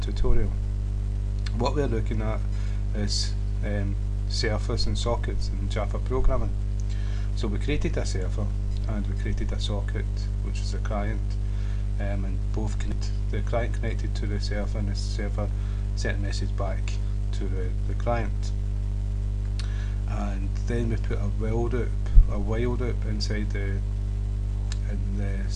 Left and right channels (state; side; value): identical; both; correlation 1.00